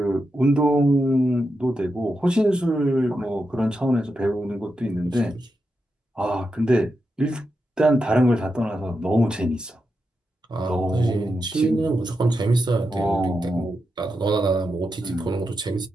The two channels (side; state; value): both; normal; correlation 0.87